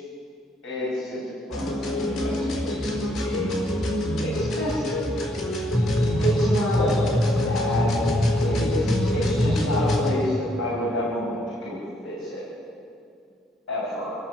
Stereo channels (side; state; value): both; normal; correlation 0.71